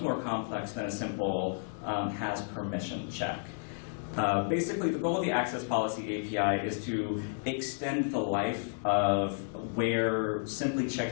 complex than a simple has permission check. Basically, the goal of the access policy API is to extend the life of where simply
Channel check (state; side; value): silent; right; digital silence